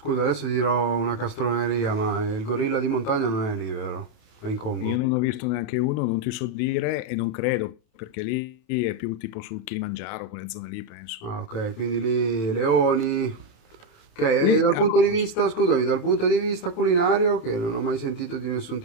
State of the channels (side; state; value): right; late; 28 ms